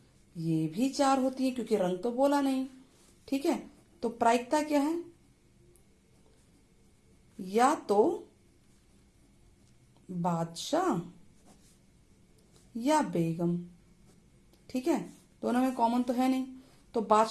ये भी 4 होती है, क्योंकि रंग तो बोला नहीं, ठीक है। तो प्रायिकता क्या है? या तो बादशाह या बेगम, ठीक है। दोनों में कॉमन तो है नहीं, तो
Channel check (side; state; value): both; identical; correlation 1.00